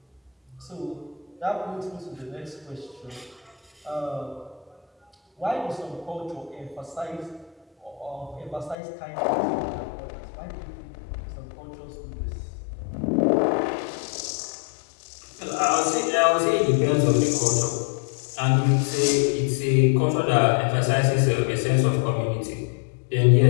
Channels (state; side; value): drops out; right; at 8.8 s